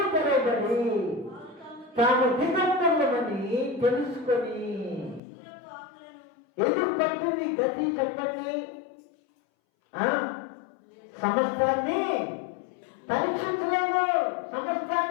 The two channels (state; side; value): drops out; right; at 5.2 s